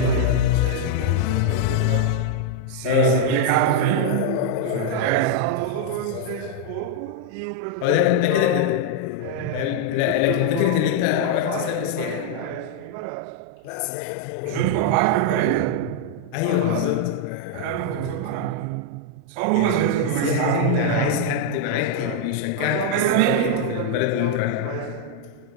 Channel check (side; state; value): both; different; correlation -0.01